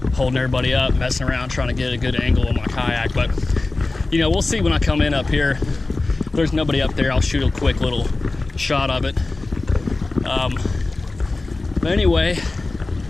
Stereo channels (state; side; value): quieter; right; 3.3 dB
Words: holding everybody up, messing around trying to get a good angle on my kayak. But you know, we'll see when I come in up here. If there's nobody up there, I'll shoot a quick little shot of it. But anyway,